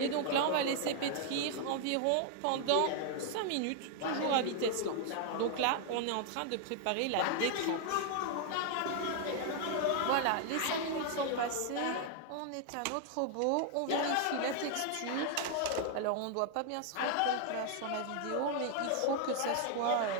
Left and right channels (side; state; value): both; different; correlation 0.00